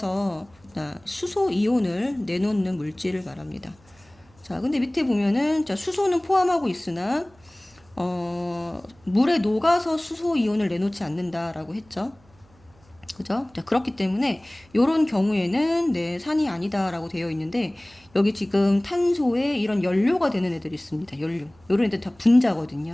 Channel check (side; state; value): right; noise; hum, 30 dB below the sound